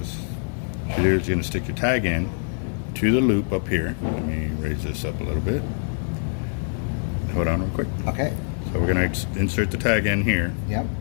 what you do is you're going to stick your tag end to the loop up here. Let me raise this up a little bit. Hold on real quick. Okay. So we're going to insert the tag in here Yep.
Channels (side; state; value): right; silent; digital silence